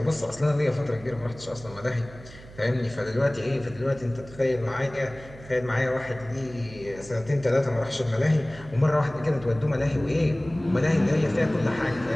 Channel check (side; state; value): right; noise; hum, 18 dB below the sound